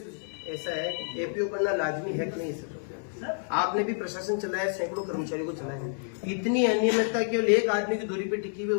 ऐसा है कि एपीओ करना लाजमी है कि नहीं सर? आपने भी प्रशासन चलाया, सैकड़ों कर्मचारियों को चलाया, इतनी अनियमितता केवल एक आदमी की दूरी पे टिकी हुई,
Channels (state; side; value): silent; right; 59 dB below the other